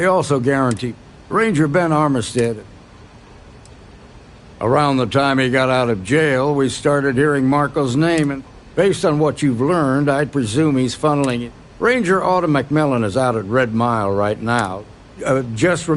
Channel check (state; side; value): identical; both; correlation 1.00